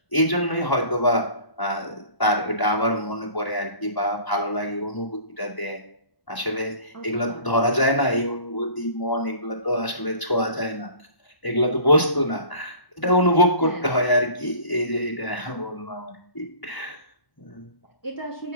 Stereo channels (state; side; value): late; right; 1.0 ms